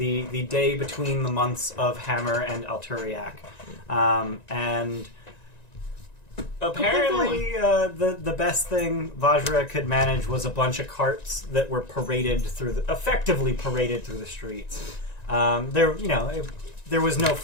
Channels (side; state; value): right; late; 1.9 ms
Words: The day between the months of Hammer and Alturiac. And apparently the best thing Vajra could manage was a bunch of carts that were effectively paraded through the streets. There was no